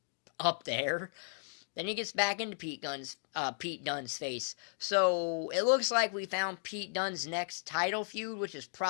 up there. Then he gets back into Pete Dunne's face. So it looks like we found Pete Dunne's next title feud, which is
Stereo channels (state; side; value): silent; right; digital silence